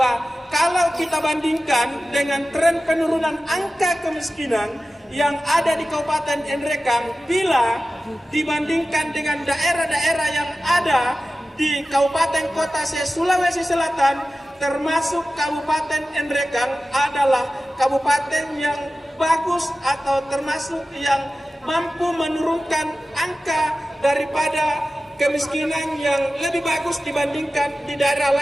kalau kita bandingkan dengan tren penurunan angka kemiskinan yang ada di Kabupaten Nrekang, bila dibandingkan dengan daerah-daerah yang ada di Kabupaten Kota Sulawesi Selatan, termasuk Kabupaten Nrekang adalah kabupaten yang bagus atau termasuk yang mampu menurunkan angka daripada kemiskinan yang lebih bagus dibandingkan di daerah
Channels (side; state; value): both; normal; correlation 0.95